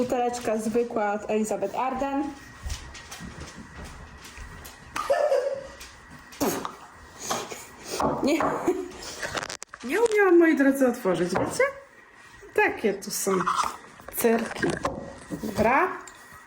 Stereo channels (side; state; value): both; identical; correlation 1.00